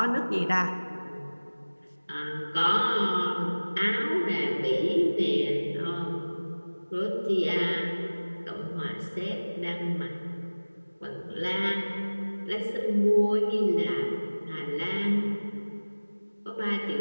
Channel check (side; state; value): both; inverted; correlation -1.00